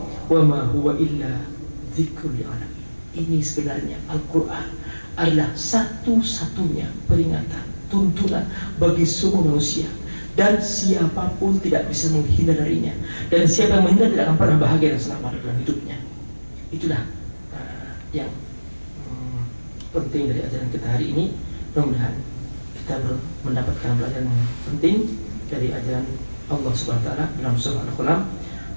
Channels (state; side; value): inverted; both; correlation -1.00